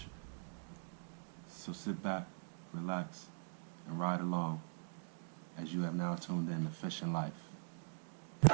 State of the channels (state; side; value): silent; left; digital silence